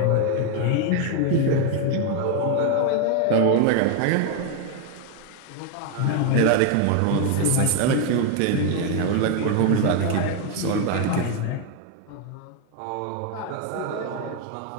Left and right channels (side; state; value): both; different; correlation 0.01